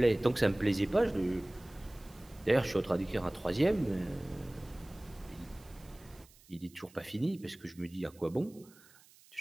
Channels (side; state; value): right; noise; hiss, 26 dB below the sound